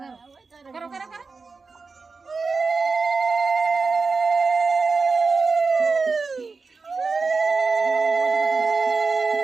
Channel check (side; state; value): left; quieter; 4.4 dB